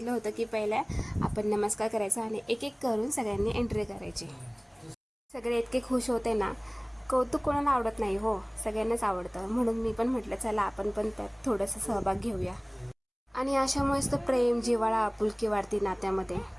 होतं की पहिल्या आपण नमस्कार करायचा आणि एक एक करून सगळ्यांनी एंट्री करायची. सगळे इतके खुश होते ना, कौतुक कोणाला आवडत नाही हो, सगळ्यांनाच आवडतं. म्हणून मी पण म्हटलं चला आपण पण त्यात थोडंसं सहभाग घेऊया. आणि अशामुळेच तर प्रेम, जिव्हाळा, आपुलकी वाढती नात्यामध्ये.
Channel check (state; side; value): identical; both; correlation 1.00